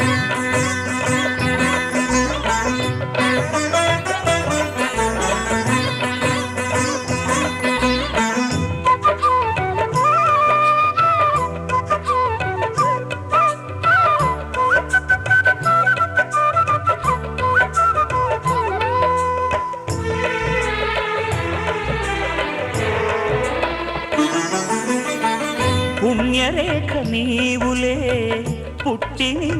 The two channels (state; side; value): identical; both; correlation 1.00